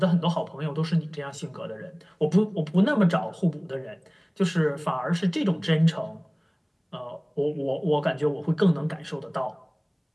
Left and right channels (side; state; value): both; identical; correlation 1.00